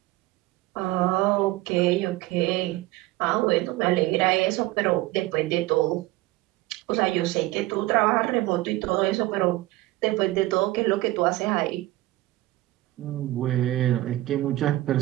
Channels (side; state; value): left; quieter; 17.9 dB